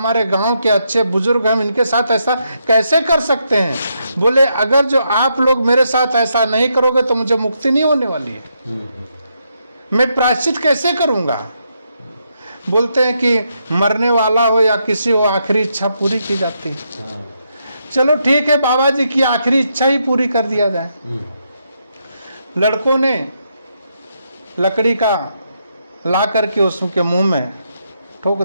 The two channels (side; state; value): both; inverted; correlation -0.79